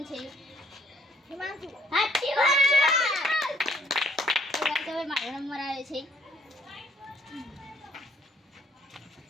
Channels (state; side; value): normal; both; correlation 0.64